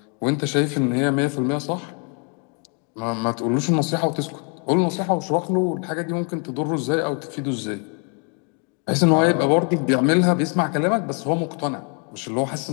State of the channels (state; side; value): quieter; right; 38.3 dB